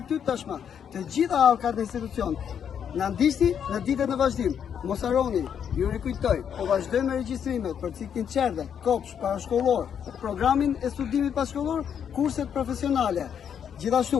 tashmë. Të gjitha halkat e institucion. Na ndiqni në ditët në vazhdim. Mos harroni, ju rikujtoj, po vazhdojmë me regjistrimet për ciklin qerdhe, kopsh, parashkollor, programin e studimit pashkollor, kurset profesionale.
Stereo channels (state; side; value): quieter; right; 8.2 dB